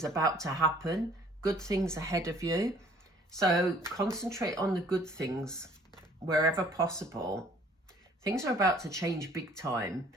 about to happen, good things ahead of you. So concentrate on the good things wherever possible. Things are about to change big time.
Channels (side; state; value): both; normal; correlation 0.57